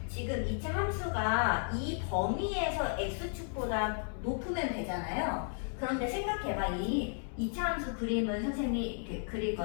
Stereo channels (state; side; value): silent; right; 55 dB below the other